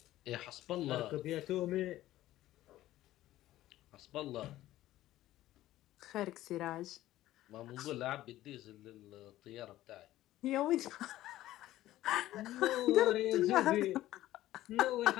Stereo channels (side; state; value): right; quieter; 14.8 dB